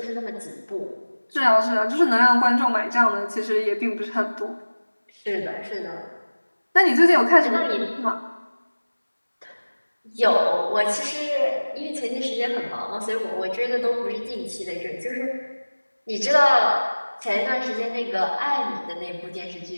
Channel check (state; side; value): inverted; both; correlation -1.00